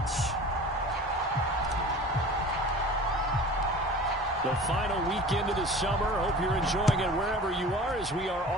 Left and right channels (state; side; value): normal; both; correlation 0.40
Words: The final weekend of the summer. Hope you're enjoying it wherever you are as we are